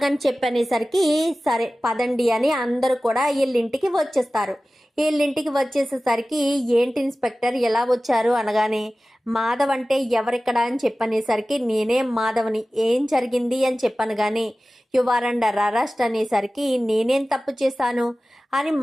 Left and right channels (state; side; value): normal; both; correlation 0.96